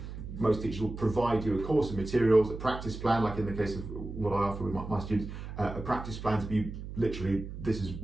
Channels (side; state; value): right; noise; hum, 9 dB below the sound